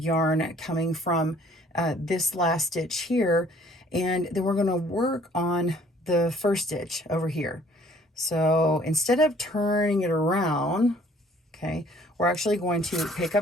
coming from this last stitch here, and then we're going to work on the first stitch over here. So instead of turning it around, okay, we're actually going to pick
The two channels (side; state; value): both; normal; correlation 0.57